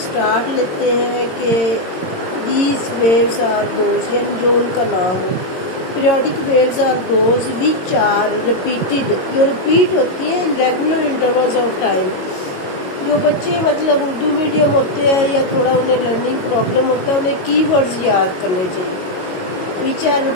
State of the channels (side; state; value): right; late; 22 ms